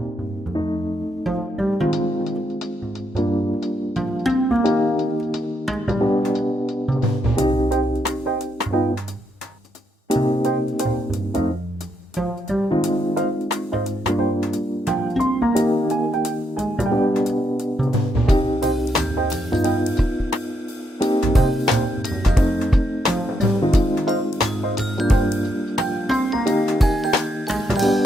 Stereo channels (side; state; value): both; normal; correlation 0.79